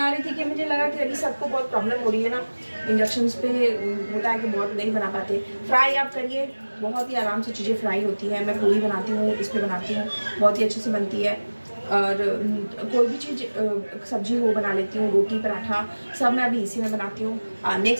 रही थी कि मुझे लगा कि अभी सबको बहुत प्रॉब्लम हो रही है ना, इंडक्शन पे होता है कि बहुत नहीं बना पाते। फ्राई आप करिए, बहुत ही आराम से चीज़ें फ्राई होती है। मैं पूरी बनाती हूँ, इस पर बनाती हूँ, बहुत ही अच्छे से बनती है। और कोई भी चीज़ सब्जी हो बना लेती हूँ, रोटी पराठा सब मैं अभी इसी में बनाती हूँ।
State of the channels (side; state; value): both; inverted; correlation -1.00